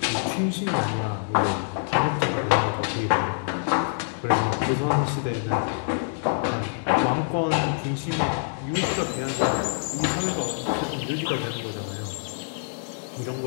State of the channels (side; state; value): right; silent; digital silence